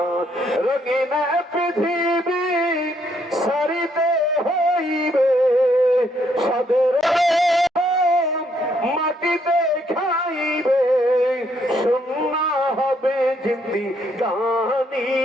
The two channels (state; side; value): normal; both; correlation 0.71